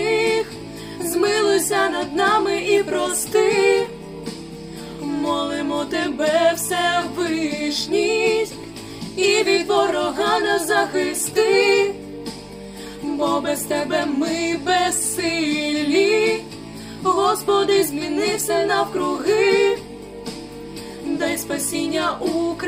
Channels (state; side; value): identical; both; correlation 1.00